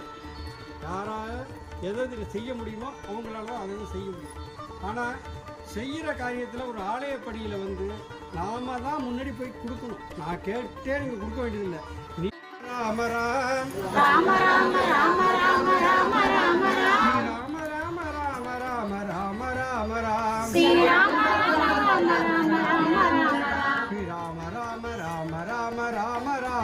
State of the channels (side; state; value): both; identical; correlation 1.00